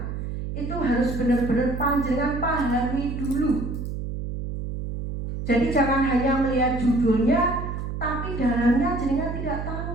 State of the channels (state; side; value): noise; right; hum, 5 dB below the sound